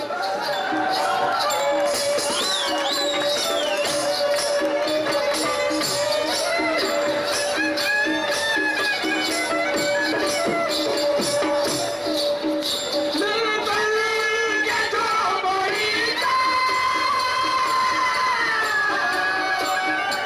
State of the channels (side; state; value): both; identical; correlation 1.00